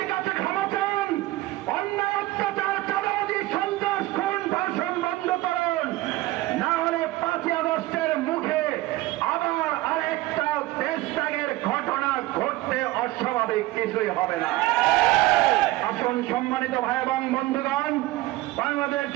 কাছে ক্ষমা চান, অন্যায় অত্যাচার চাঁদাবাজি সন্ত্রাস খুন ধর্ষণ বন্ধ করুন, না হলে 5ই আগস্টের মুখে আবার আরেকটা দেশত্যাগের ঘটনা ঘটতে অস্বাভাবিক কিছুই হবে না। আসুন সম্মানিত ভাই এবং বন্ধুগণ, বাংলাদেশ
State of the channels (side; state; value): left; quieter; 18.0 dB